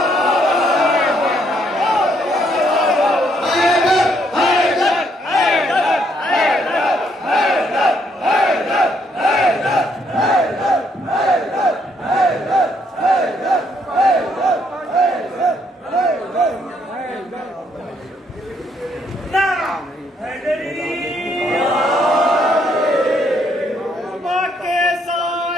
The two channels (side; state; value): both; normal; correlation 0.71